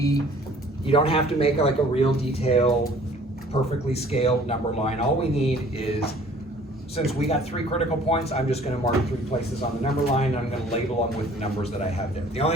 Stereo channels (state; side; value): normal; both; correlation 0.53